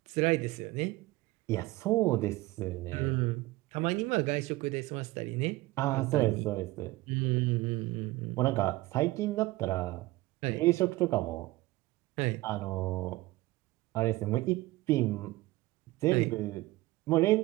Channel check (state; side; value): quieter; left; 19.1 dB